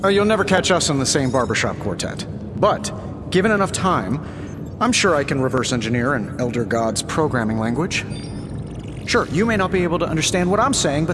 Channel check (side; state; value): both; identical; correlation 1.00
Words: You'll never catch us in the same barbershop quartet. But, given enough time, I'm sure I can reverse engineer an Elder God's programming language. Sure, you may not be able to understand what I'm saying,